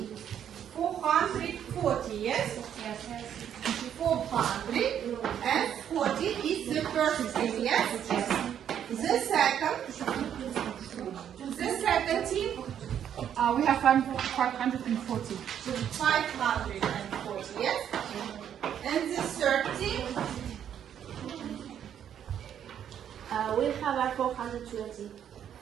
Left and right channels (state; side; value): quieter; left; 9.4 dB